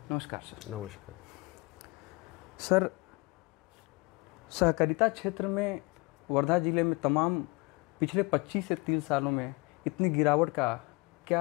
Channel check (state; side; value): quieter; right; 25.5 dB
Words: नमस्कार सर। नमस्कार सर, सहकारिता क्षेत्र में वर्धा ज़िले में तमाम पिछले 25 से 30 सालों में इतनी गिरावट का